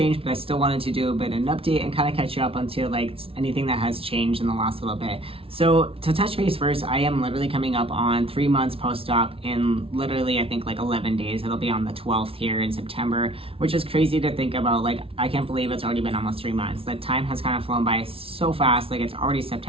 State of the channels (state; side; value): late; left; 0.26 ms